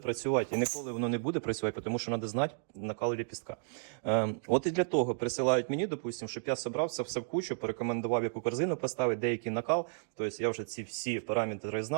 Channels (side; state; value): left; silent; digital silence